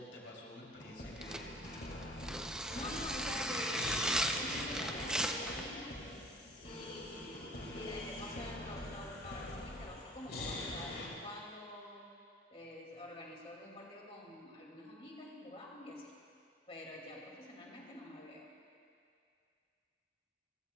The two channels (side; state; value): both; normal; correlation 0.50